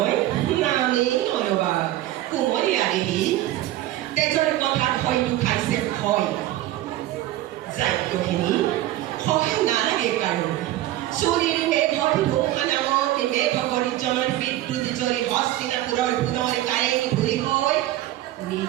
নামেই নলবা কোমলীয়া দেহি তেজৰ কথাত হয়তো খাইছে ভয়। যাজ্ঞসেনী সহায় নালাগে কাৰো চুৰিৰ মেঘৰ ধুমুহা নামত মেঘ গৰ্জনৰ বিদ্যুৎ জৰি হস্তিনাপুৰৰ পুনৰ কাৰেং ঘূৰি হৈ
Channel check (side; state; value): left; quieter; 14.8 dB